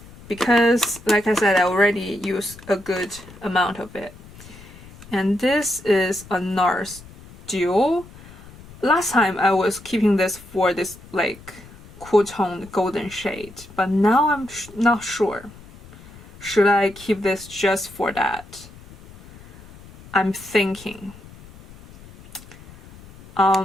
because, like I said, I already use a good amount of it. And this is a NARS Duo. Last time I was keeping this for this like cool toned golden shade, but now I'm not sure. Should I keep this just for that? I'm thinking.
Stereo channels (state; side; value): noise; left; rumble, 20 dB below the sound